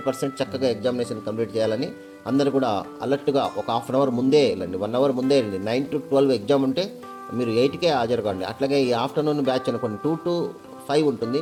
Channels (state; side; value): identical; both; correlation 1.00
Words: చక్కగా ఎగ్జామినేషన్ కంప్లీట్ చేయాలని అందరూ కూడా అలర్ట్గా ఒక హాఫ్ అన్ అవర్ ముందే వెళ్ళండి, 1 అవర్ ముందే వెళ్ళండి. 9 to 12 ఎగ్జామ్ ఉంటే మీరు 8కే హాజరు కాండి. అట్లాగే ఈ ఆఫ్టర్నూన్ బ్యాచ్ అనుకోండి 2 to 5 ఉంటుంది,